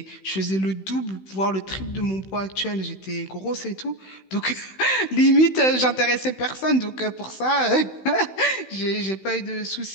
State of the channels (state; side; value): late; right; 16 ms